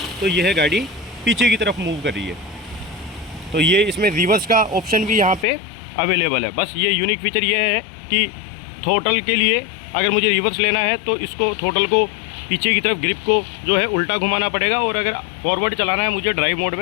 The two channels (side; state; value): right; drops out; at 5.5 s